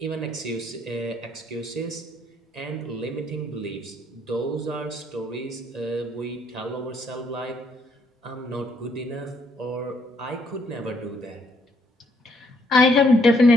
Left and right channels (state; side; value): normal; both; correlation 0.70